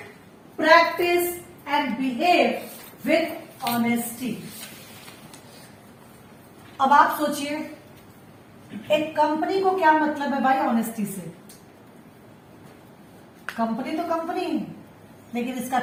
practice and behave with honesty. अब आप सोचिए, एक कंपनी को क्या मतलब है भाई ऑनेस्टी से? कंपनी तो कंपनी है, लेकिन इसका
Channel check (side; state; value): both; identical; correlation 1.00